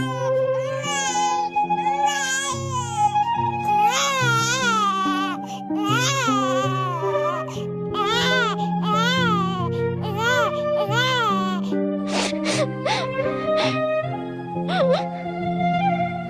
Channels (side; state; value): both; identical; correlation 1.00